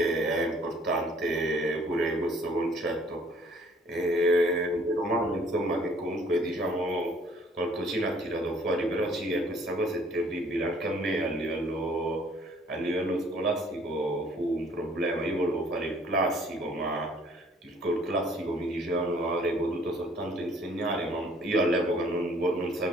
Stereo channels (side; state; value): both; normal; correlation 0.59